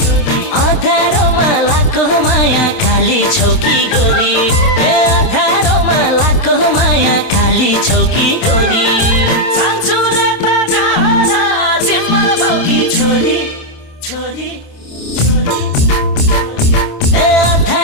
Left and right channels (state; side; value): late; right; 27 ms